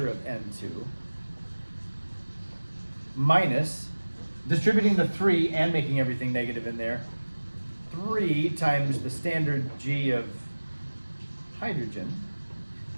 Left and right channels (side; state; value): both; inverted; correlation -1.00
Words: of N2 minus, distributing the 3 and making everything negative in there, 3 times the standard G of hydrogen